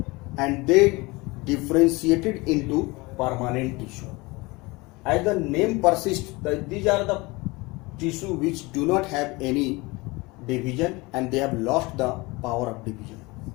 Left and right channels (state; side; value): quieter; right; 24.0 dB